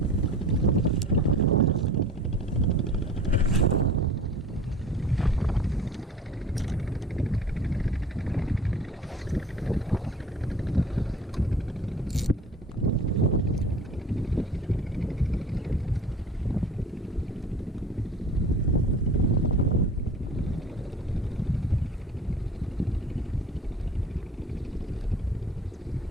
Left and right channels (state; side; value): normal; both; correlation 0.43